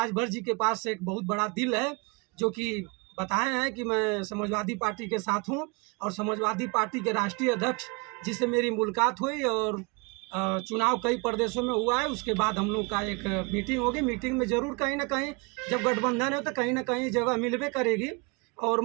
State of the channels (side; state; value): left; quieter; 30.1 dB